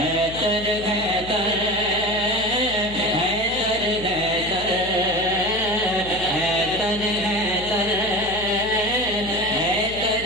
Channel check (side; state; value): left; noise; hum, 13 dB below the sound